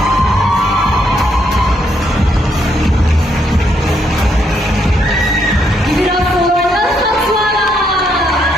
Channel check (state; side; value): normal; both; correlation 0.75